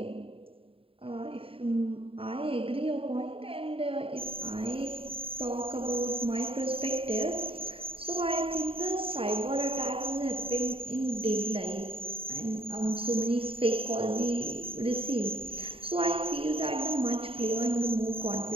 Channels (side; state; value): left; late; 0.27 ms